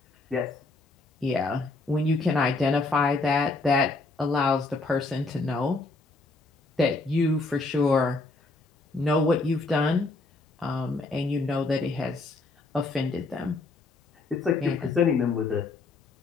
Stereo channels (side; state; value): right; quieter; 3.5 dB